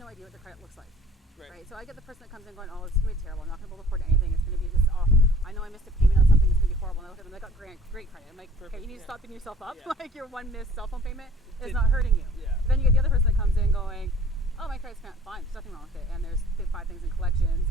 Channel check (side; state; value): both; normal; correlation 0.53